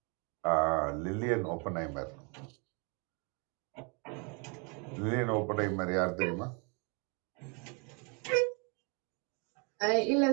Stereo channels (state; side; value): quieter; left; 33.1 dB